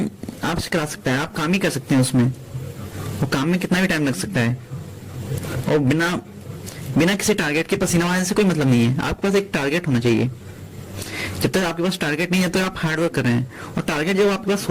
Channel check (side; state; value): both; identical; correlation 1.00